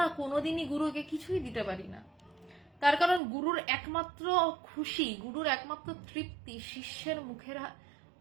কোনোদিনই গুরুকে কিছুই দিতে পারি না। তার কারণ গুরুর একমাত্র খুশি, গুরুর একমাত্র তৃপ্তি শিষ্যের মুখের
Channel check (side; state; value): left; drops out; at 3.2 s